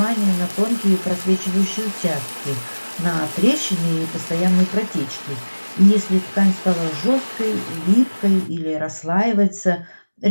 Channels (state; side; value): inverted; both; correlation -1.00